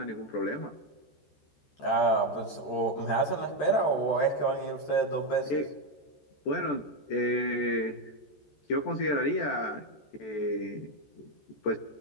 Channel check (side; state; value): right; late; 13 ms